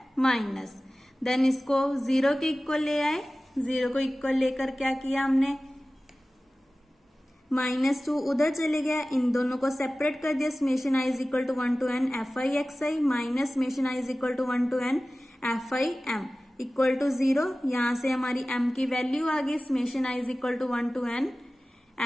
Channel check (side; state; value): both; normal; correlation 0.97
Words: माइनस। देन इसको 0 के इक्वल ले आए। 0 को इक्वल लेकर क्या किया हमने? -2 उधर चले गया, इन दोनों को सेपरेट कर दिया। Summation i is equal to 1 to n fi xi minus summation i is equal to 1 to n fi m equal to 0। यहां से हमारी m की वैल्यू आ गई। Summation i is equal to 1 to n